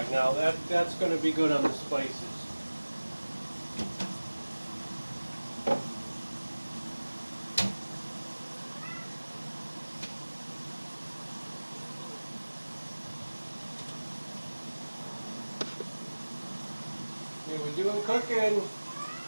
now that's going to be good on the spices. Okay, we're doing cooking.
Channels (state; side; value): inverted; both; correlation -1.00